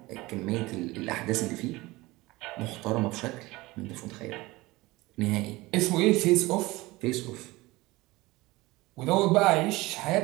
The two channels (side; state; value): left; quieter; 20.7 dB